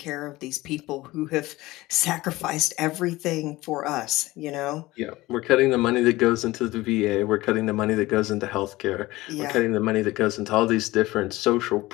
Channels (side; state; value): right; quieter; 19.0 dB